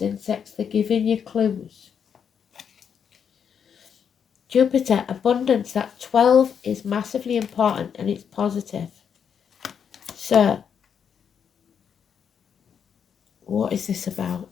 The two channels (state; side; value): quieter; right; 7.5 dB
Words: insects. They're giving you clues. Jupiter, abundance, that 12 is massively important and it's positive. So, what is this about?